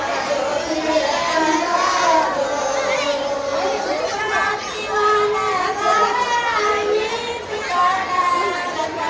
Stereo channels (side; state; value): both; identical; correlation 1.00